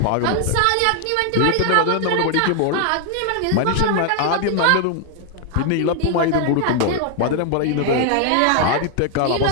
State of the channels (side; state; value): both; different; correlation 0.00